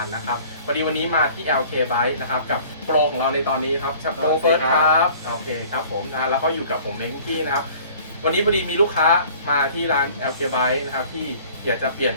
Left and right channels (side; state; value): both; inverted; correlation -0.50